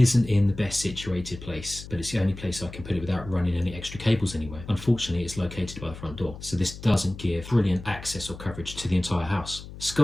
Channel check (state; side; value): noise; left; hum, 13 dB below the sound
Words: in the best situated place, but it's the only place I can put it without running any extra cables anywhere. Unfortunately, it's located by the front door, so this doesn't give brilliant access or coverage to the entire house.